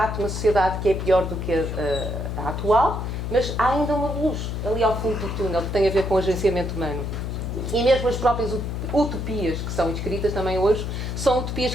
de uma sociedade que é pior do que a atual, mas há ainda uma luz ali ao fundo do túnel que tem a ver com o agenciamento humano. E mesmo as próprias utopias que são escritas também hoje são utopias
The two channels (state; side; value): noise; left; hum, 3 dB below the sound